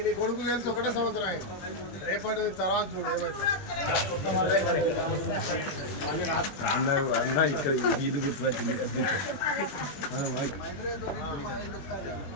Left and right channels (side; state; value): right; late; 21 ms